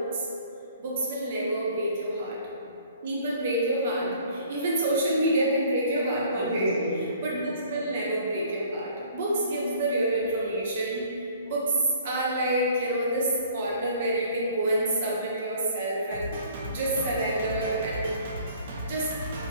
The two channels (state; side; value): inverted; both; correlation -0.54